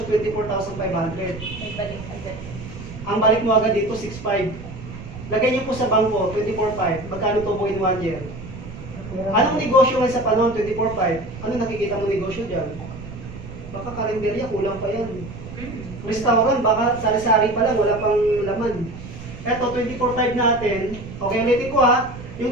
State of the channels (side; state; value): right; noise; rumble, 12 dB below the sound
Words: 24,500? May balik agad. Ang balik mo agad dito, 6,500. Lagay niyo po sa bangko, 24,500. Magkano to po in 1 year? Anong negosyo ngayon sa panahon, 24,500? Ano nakikita mo negosyo dyan? Baka karinderya, kulang pa yan. Restaurant, baka sari-sari pa lang, wala pang laman. Eto, 24,500 natin. Okay, ulitin ko ha.